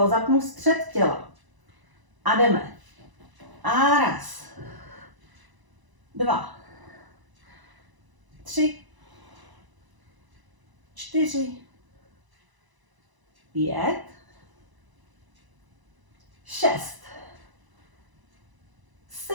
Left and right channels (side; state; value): left; late; 1.0 ms